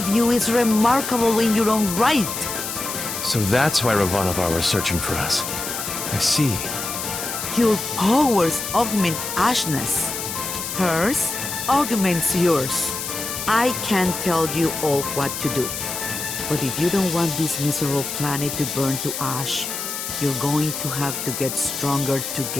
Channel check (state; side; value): noise; left; hiss, 5 dB below the sound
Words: you is remarkable in your own right. So that's why Ravanavar was searching for us. I see. Your powers augment Ashna's. Hers augments yours. I can't tell you all what to do. But if you don't want this miserable planet to burn to ash, you're going to have to get stronger